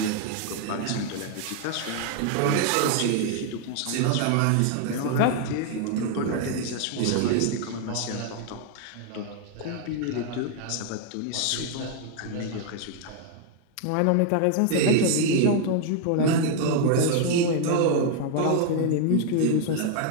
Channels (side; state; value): both; different; correlation 0.00